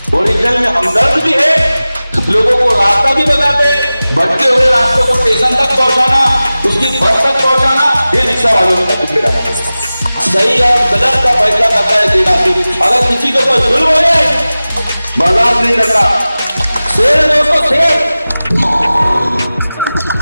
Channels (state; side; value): inverted; both; correlation -0.97